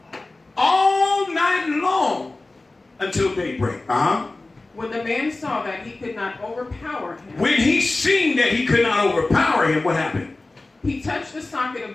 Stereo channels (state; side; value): quieter; right; 3.1 dB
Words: all night long until daybreak. When the man saw that he could not overpower him. When he seen that he could not overpower him, what happened? He touched the socket